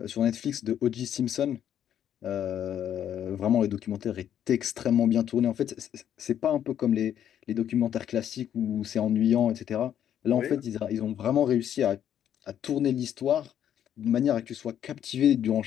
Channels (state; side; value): quieter; right; 10.0 dB